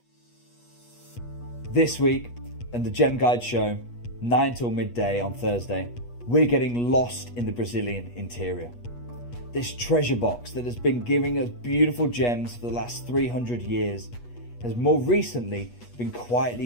This week, and the Gem Guide show, 9 till midday on Thursday, we're getting lost in the Brazilian interior. This treasure box that has been giving us beautiful gems for the last 300 years has more recently been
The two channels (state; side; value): late; right; 8.3 ms